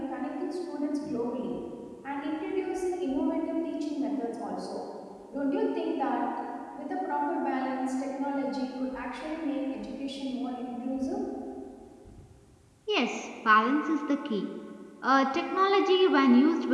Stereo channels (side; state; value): both; identical; correlation 1.00